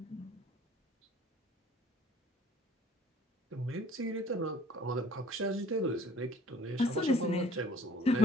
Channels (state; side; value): normal; both; correlation 0.53